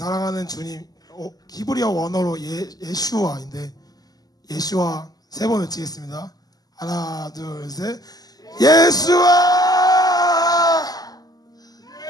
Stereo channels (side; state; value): right; late; 0.18 ms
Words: 주님, 히브리어 원어로 예슈아인데 예슈아 세 번 외치겠습니다. 하나, 둘, 셋. 예수아!